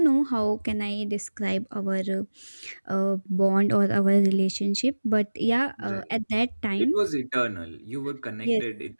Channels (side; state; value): both; inverted; correlation -1.00